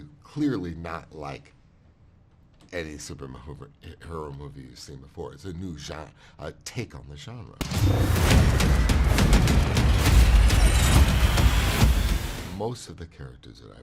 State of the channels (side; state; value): both; identical; correlation 1.00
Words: Clearly not like any superhero movie you've seen before. It's a new genre, a take on the genre. Most of the characters that I